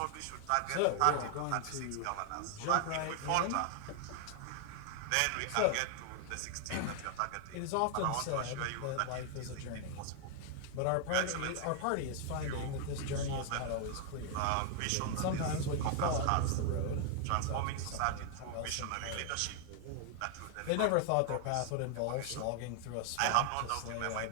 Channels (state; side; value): different; both; correlation 0.00